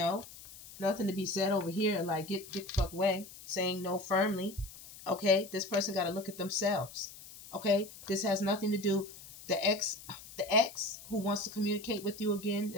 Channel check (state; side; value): noise; left; hiss, 17 dB below the sound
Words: Nothing to be said over here like get the fuck away. Saying no firmly. Okay? This person got to look at themselves. Okay? This has nothing to do. The ex who wants to communicate with you again,